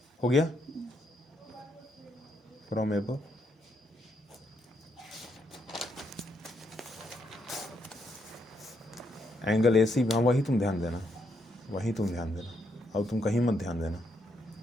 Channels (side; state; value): both; normal; correlation 0.77